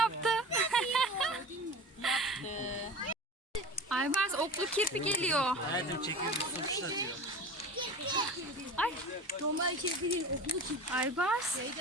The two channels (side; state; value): both; normal; correlation 0.34